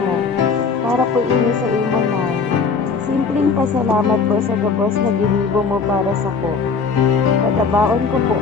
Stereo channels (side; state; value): right; quieter; 5.1 dB